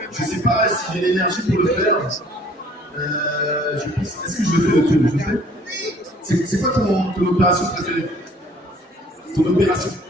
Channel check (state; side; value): normal; both; correlation 0.56